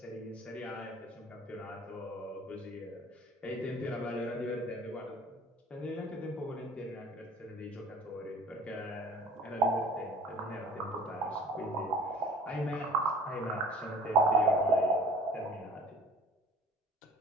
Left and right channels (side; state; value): both; normal; correlation 0.47